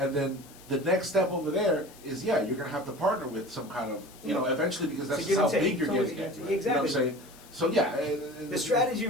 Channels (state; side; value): noise; left; hiss, 22 dB below the sound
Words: then the next step over there is you're gonna have to partner with some kind of eventually, because that's To just give how and take. big you're It's always getting. a give and At, take. You know what I'm Exactly. saying? So yeah, The strategy